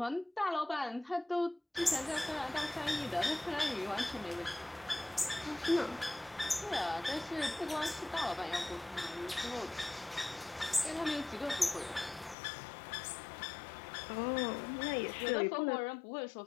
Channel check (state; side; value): drops out; right; at 12.4 s